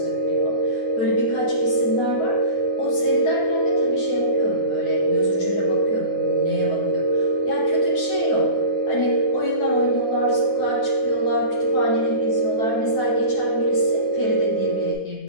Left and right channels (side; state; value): right; late; 9.5 ms